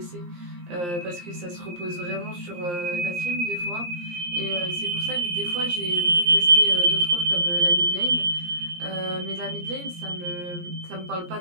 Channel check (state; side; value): late; left; 17 ms